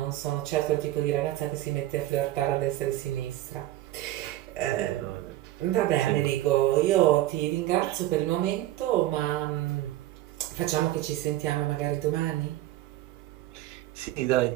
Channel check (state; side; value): quieter; left; 15.1 dB